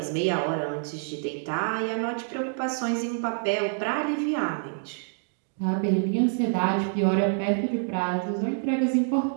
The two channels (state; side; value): silent; left; 60 dB below the other